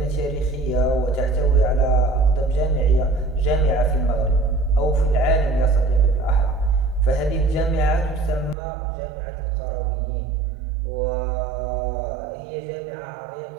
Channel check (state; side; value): drops out; left; at 8.6 s